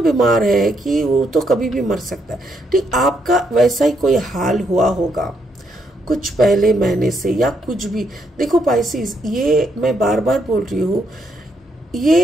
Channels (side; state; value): both; normal; correlation 0.76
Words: है कि वो तो कभी भी मर सकता है। ठीक, आपका वैसा ही कोई हाल हुआ होगा कुछ पहले महीने से या कुछ भी। देखो पाइसिस, ये मैं बार बार बोल रही हूँ,